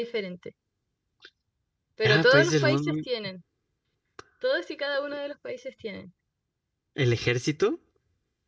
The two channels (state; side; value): identical; both; correlation 1.00